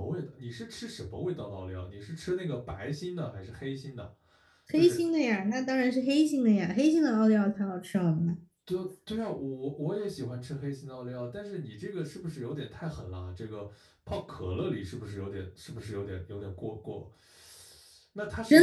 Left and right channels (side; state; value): both; identical; correlation 1.00